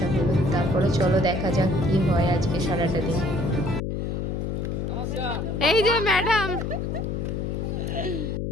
হলো। তারপরে চলো দেখা যাক কি হয় আজকে সারাটা দিন। এই যে ম্যাডাম,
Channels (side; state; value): left; noise; hum, 2 dB below the sound